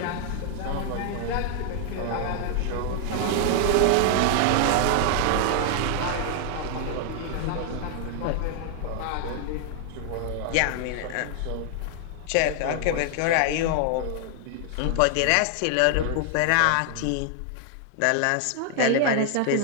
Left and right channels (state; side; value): different; both; correlation 0.00